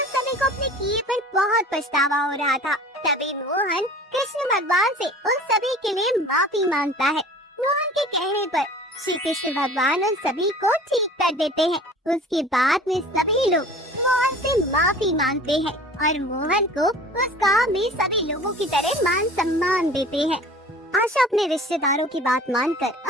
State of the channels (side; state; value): both; normal; correlation 0.44